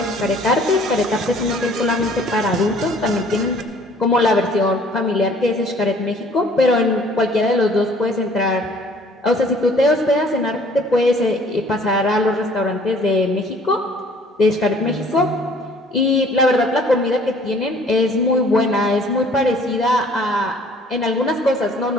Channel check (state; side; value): normal; both; correlation 0.55